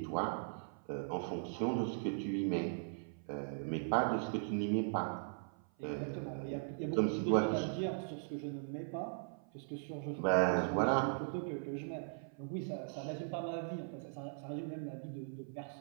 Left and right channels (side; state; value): left; silent; 52 dB below the other